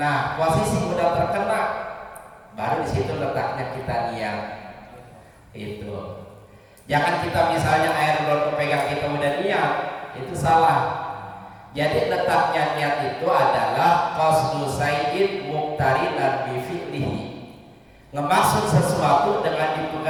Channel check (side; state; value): both; identical; correlation 1.00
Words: nah posisi udah terkena, baru di situ letaknya kita niat. Itu. Jangan kita misalnya air belum kepegang kita udah niat, itu salah. Jadi letaknya niat itu adalah qasdu sayyid muqtarinan bi fi'lihi. Ngemaksud sesuatu dengan